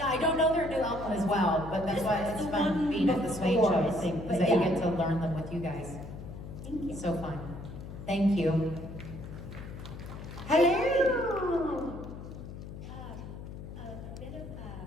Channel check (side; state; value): left; noise; hum, 11 dB below the sound